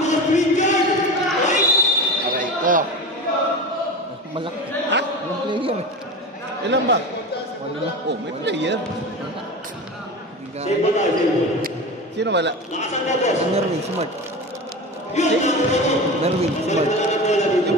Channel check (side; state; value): both; normal; correlation 0.28